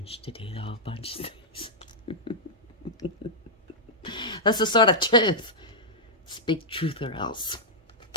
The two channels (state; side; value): normal; both; correlation -0.07